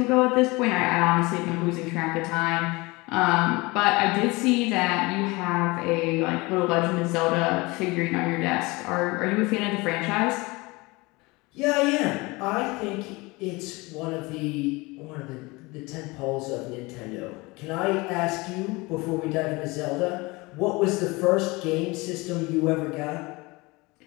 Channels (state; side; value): quieter; right; 23.9 dB